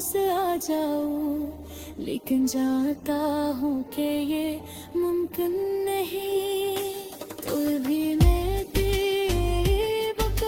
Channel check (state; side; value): identical; both; correlation 1.00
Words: आ जाओ, लेकिन जानता हूँ कि ये मुमकिन नहीं। तो भी मैं दीप